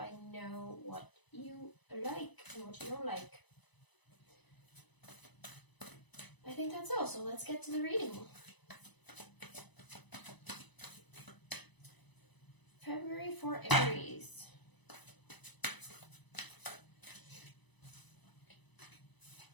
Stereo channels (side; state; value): right; late; 1.0 ms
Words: know what you like and what you don't like. I think that's all, so let's get to the reading. February for Aries.